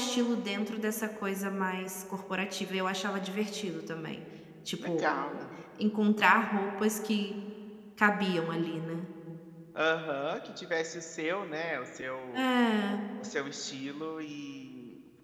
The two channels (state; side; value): identical; both; correlation 1.00